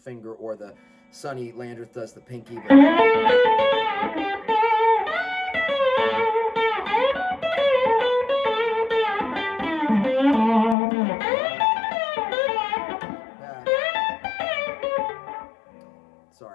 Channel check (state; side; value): drops out; right; at 10.8 s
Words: or the Sonny Landreth does the pinky. But